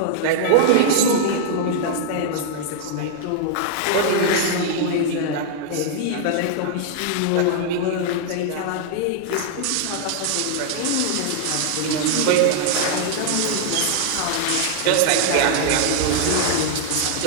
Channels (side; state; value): both; different; correlation -0.01